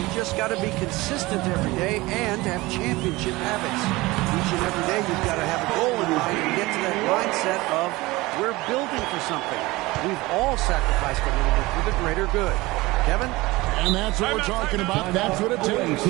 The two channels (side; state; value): left; quieter; 20.8 dB